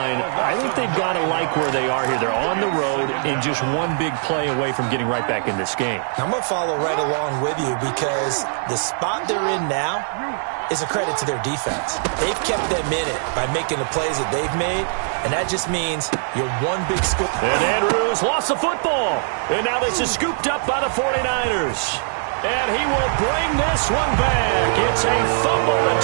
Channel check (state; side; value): silent; left; 65 dB below the other